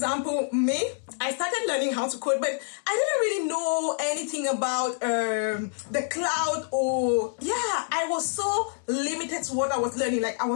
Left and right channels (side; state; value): right; silent; 60 dB below the other